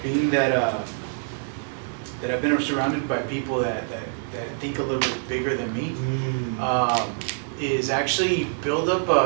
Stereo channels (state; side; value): silent; left; digital silence